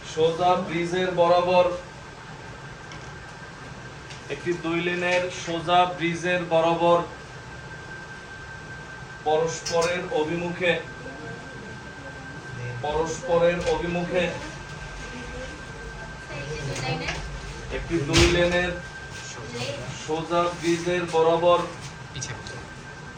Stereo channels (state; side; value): identical; both; correlation 1.00